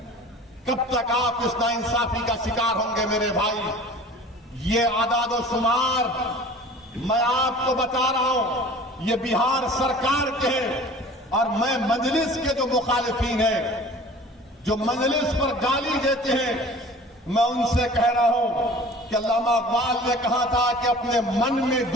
कब तक आप इस नाइंसाफी का शिकार होंगे मेरे भाई? ये आदाद शुमार मैं आपको बता रहा हूं, ये बिहार सरकार के हैं। और मैं मजलिस के जो मुखालिफिन हैं, जो मजलिस पर गाली देते हैं, मैं उनसे कह रहा हूं कि अल्लामा इकबाल ने कहा था कि अपने मन में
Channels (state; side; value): normal; both; correlation 0.44